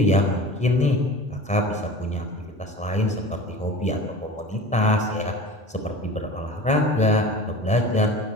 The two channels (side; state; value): both; normal; correlation 0.37